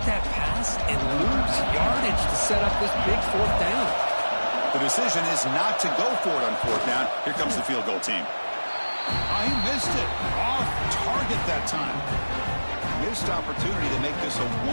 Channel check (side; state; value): both; inverted; correlation -1.00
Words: that pass and lose yardage to set up this big 4th down. The decision is not to go for it on 4th down. Here comes the field goal team. He missed it. Off target that time. Missed opportunity to make this a